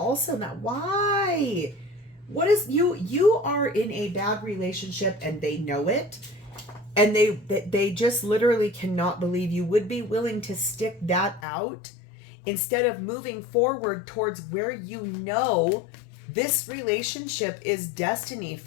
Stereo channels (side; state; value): right; drops out; at 11.4 s